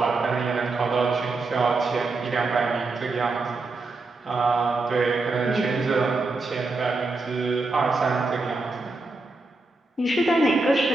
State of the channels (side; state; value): left; quieter; 3.4 dB